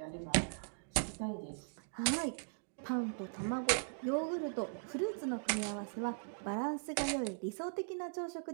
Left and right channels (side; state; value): left; silent; digital silence